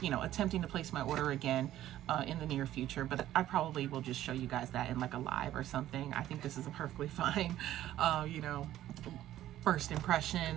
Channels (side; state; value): left; quieter; 13.3 dB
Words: to place my order again in the near future, but I probably will just show you guys that in like a live or something. I think this is a perfectly fine, first impression